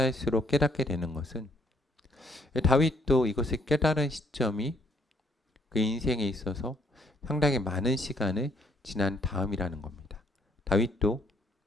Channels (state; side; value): normal; both; correlation 0.67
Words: 깨닫게 되는 것은 다윗도 이것을 깨달은 시점이 그 인생에 있어서 상당히 많은 시간을 지난 다음이라는 겁니다. 다윗도